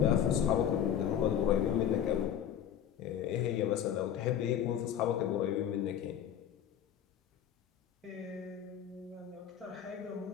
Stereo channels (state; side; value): quieter; right; 9.6 dB